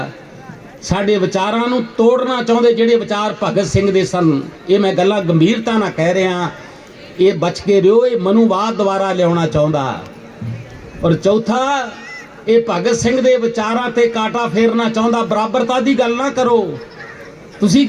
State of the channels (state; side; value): identical; both; correlation 1.00